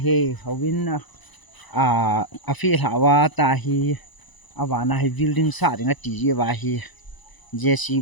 howin a fi hawa ta hi awana hi building sa ring a ti je wa hi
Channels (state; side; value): late; right; 1.0 ms